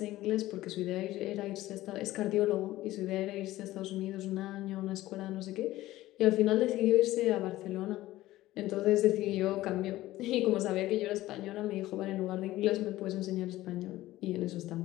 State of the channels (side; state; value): right; quieter; 16.2 dB